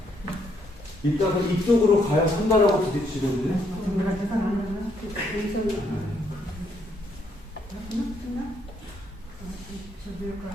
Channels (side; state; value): both; normal; correlation 0.72